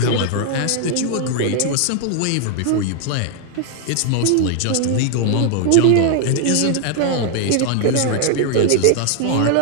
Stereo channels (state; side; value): different; both; correlation 0.00